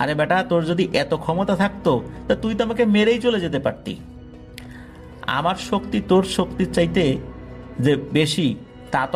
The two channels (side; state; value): both; identical; correlation 1.00